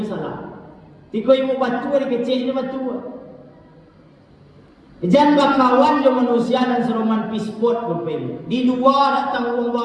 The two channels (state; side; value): identical; both; correlation 1.00